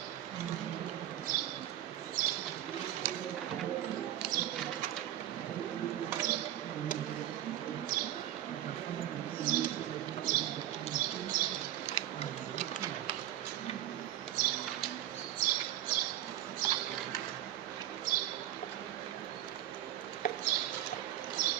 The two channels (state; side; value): quieter; left; 12.5 dB